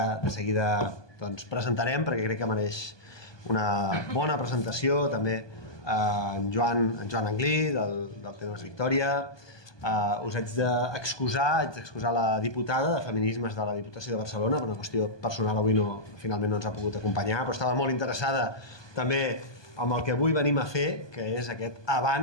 de seguida presentarem perquè crec que mereix una bona presentació, també en Joan Anglí del Temes Victòria. Us haig d'excusar la diputada de Feminismes de la Diputació de Barcelona, per una qüestió personal avui finalment no ens ha pogut acompanyar, però estava molt interessada també amb el que avui venim a fer, que és aquest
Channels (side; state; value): right; late; 1.2 ms